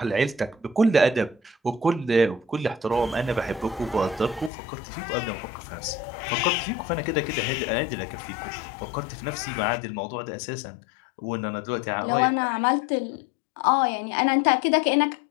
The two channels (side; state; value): right; drops out; at 4.5 s